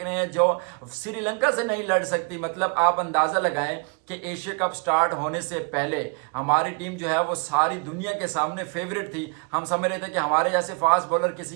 रहे हैं जो श्रीलंका से नहीं लड़ सकती। मतलब आप अंदाज़ा लगाएं कि एशिया कप स्टार्ट होने से पहले हमारी टीम जो है वो सारी दुनिया के सामने फेवरेट थी। हम समझ रहे थे कि हमारे जैसे फास्ट बॉलर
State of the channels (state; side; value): quieter; left; 34.7 dB